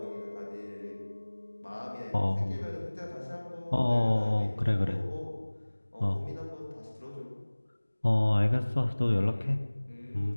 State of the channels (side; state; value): both; inverted; correlation -1.00